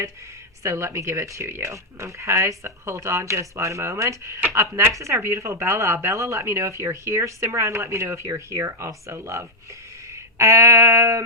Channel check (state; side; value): normal; both; correlation -0.01